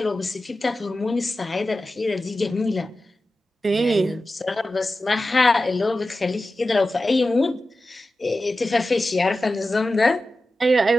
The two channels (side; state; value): both; normal; correlation 0.93